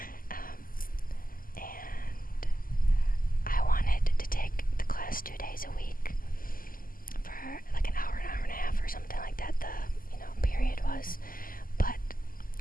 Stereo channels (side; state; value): right; late; 0.41 ms